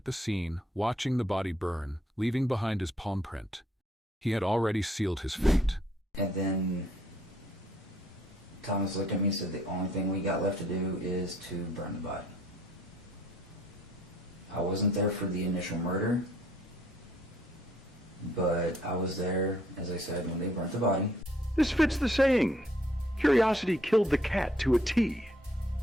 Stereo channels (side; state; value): both; normal; correlation 0.65